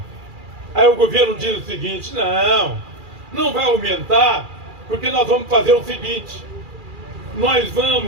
Aí o governo diz o seguinte, não vai aumentar, porque nós vamos fazer o seguinte, nós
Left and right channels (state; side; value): late; left; 2.4 ms